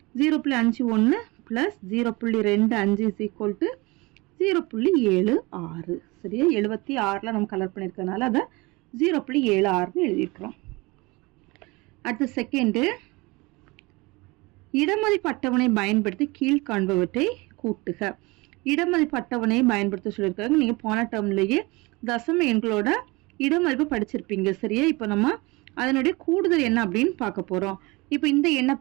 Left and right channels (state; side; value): quieter; left; 24.3 dB